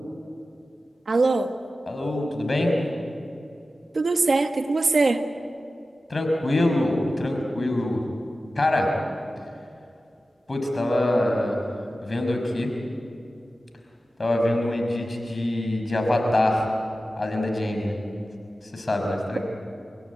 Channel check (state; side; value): normal; both; correlation 0.94